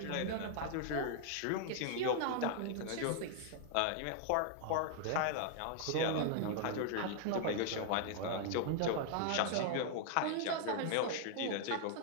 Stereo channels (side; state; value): both; different; correlation 0.00